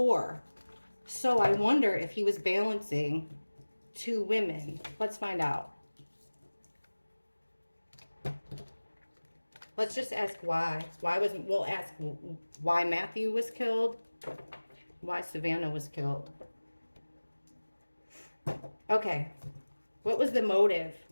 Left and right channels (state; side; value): inverted; both; correlation -1.00